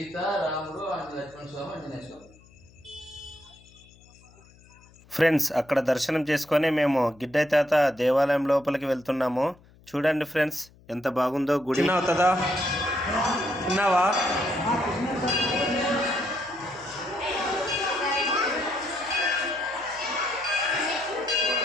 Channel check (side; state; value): left; noise; hum, 27 dB below the sound